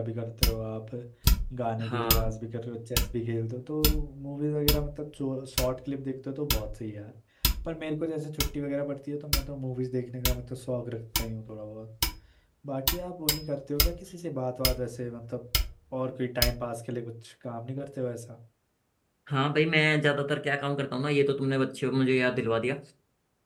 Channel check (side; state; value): both; identical; correlation 1.00